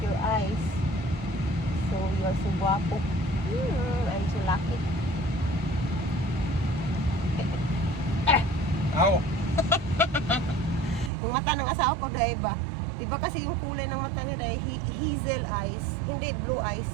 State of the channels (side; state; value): left; drops out; at 11.1 s